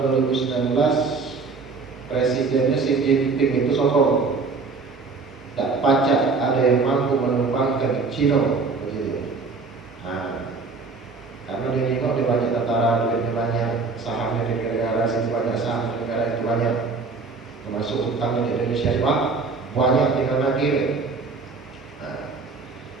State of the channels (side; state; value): left; quieter; 4.3 dB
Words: 2019 presidennya Xi Jinping itu sombong. Tak pacak ada yang mampu menumpangkan Cina. Karena dia nengok dia banyak tentara, duitnya banyak, sahamnya di negara sini banyak, saham di negara itu banyak, termasuk utangnya di Indonesia banyak, tinggal lagi.